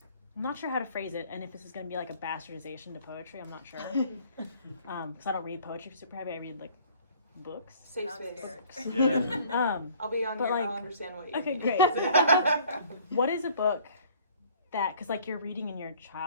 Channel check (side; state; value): both; inverted; correlation -0.54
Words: I'm not sure how to phrase it, and if this is going to be like a bastardization to poetry, I'm not sure. Because I don't read poetry super heavy. I read like books. Safe I'm space. scared. Yeah. I'll be on But, your, like, I'll understand what you Okay, mean. great. What is a book that, because like you're reading in your